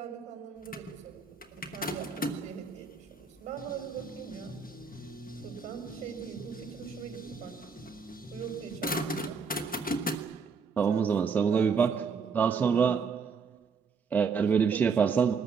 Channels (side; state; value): left; quieter; 5.5 dB